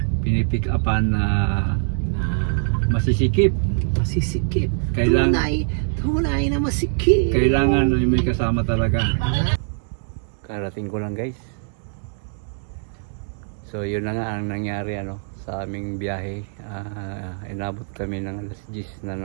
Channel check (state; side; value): silent; left; digital silence